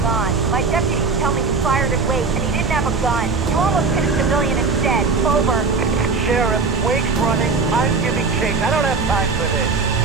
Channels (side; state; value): left; quieter; 4.5 dB